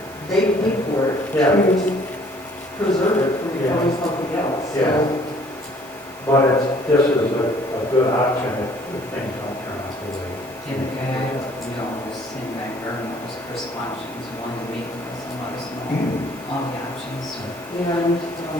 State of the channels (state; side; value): normal; both; correlation 0.58